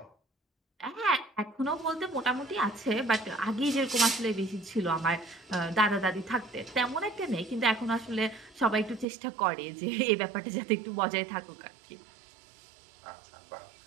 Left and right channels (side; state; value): left; drops out; at 9.1 s